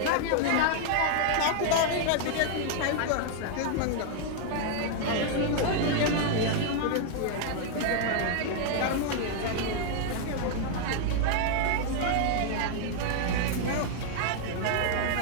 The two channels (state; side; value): different; both; correlation 0.00